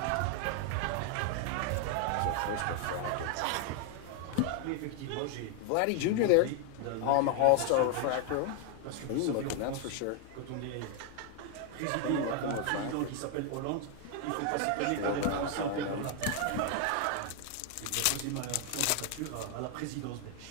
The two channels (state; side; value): different; both; correlation 0.00